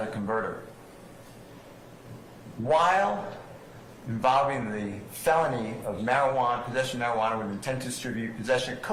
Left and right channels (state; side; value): identical; both; correlation 1.00